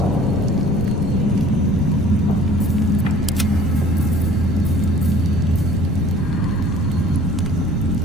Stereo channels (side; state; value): left; noise; rumble, 9 dB below the sound